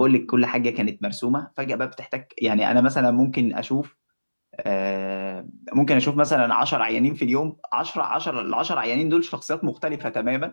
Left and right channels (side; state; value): both; inverted; correlation -1.00